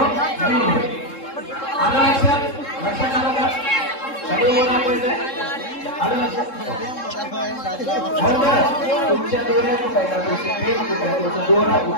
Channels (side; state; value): right; late; 3.7 ms